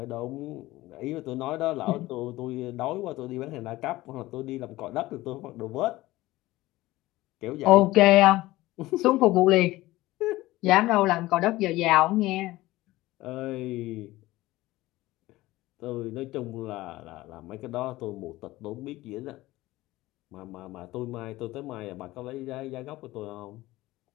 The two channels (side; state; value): right; quieter; 18.0 dB